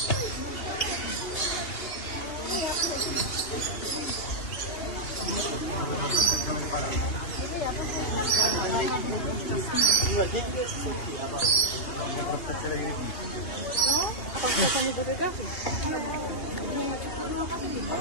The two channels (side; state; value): right; late; 2.8 ms